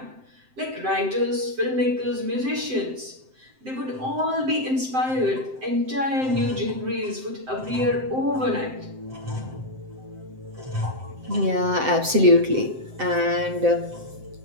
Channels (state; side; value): late; left; 7.7 ms